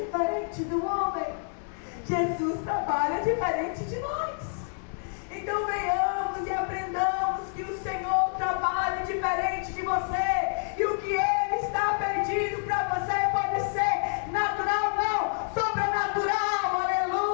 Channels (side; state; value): right; silent; 59 dB below the other